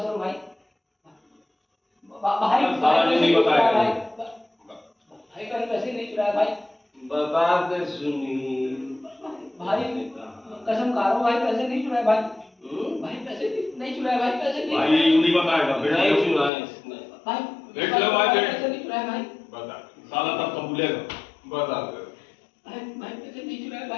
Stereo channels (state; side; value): drops out; right; at 16.5 s